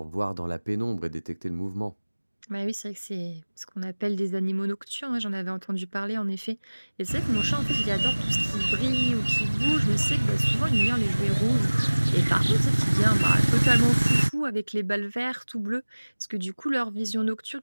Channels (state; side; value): inverted; both; correlation -1.00